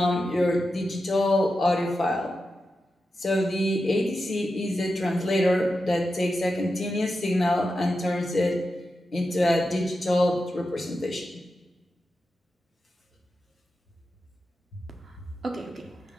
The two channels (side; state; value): both; normal; correlation 0.90